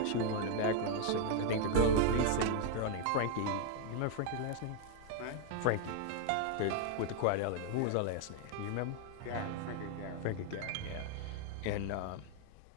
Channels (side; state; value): both; different; correlation 0.00